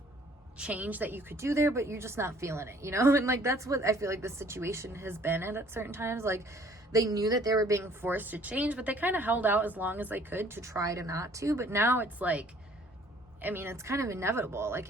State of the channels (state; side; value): normal; both; correlation 0.57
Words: change that you could do there, but you're just not feeling it, you know? And, like, that's what I feel like the situation has been at certain times. Like, they knew that they were being forced to change, but they kind of held out as long as they could to try to not to. But now it's like, I mean, it's kind of inevitable. Like,